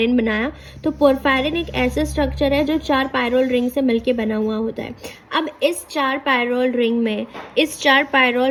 बनाया। तो पोरफायरिन एक ऐसा स्ट्रक्चर है जो 4 पायरोल रिंग से मिलके बना हुआ होता है। अब इस 4 पायरोल रिंग में, इस 4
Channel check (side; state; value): both; identical; correlation 1.00